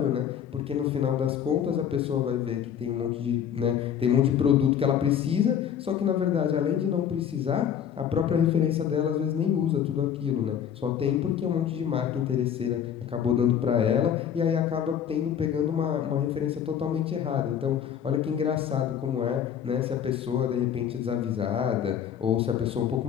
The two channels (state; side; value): quieter; right; 8.8 dB